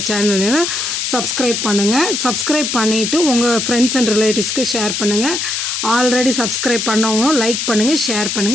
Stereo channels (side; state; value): left; noise; hiss, 2 dB below the sound